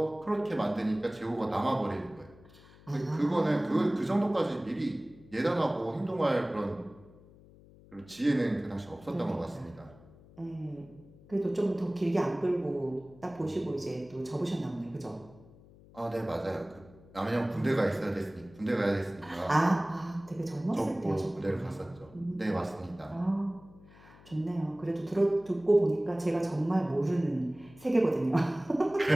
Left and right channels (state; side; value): noise; left; hum, 23 dB below the sound